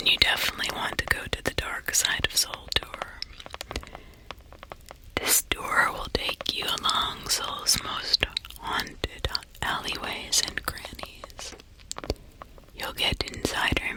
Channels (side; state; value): both; identical; correlation 1.00